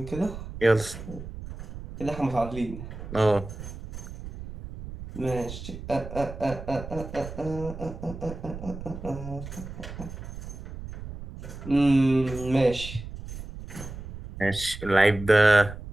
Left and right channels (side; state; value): right; noise; rumble, 11 dB below the sound